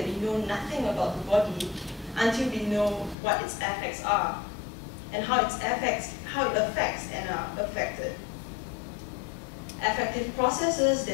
we know nothing about the body until we know what its effects are and how it affects and are affected. Affective processes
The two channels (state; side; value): drops out; right; at 3.2 s